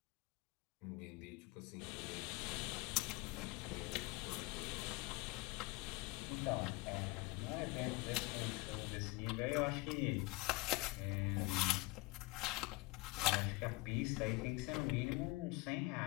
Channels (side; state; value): right; quieter; 23.6 dB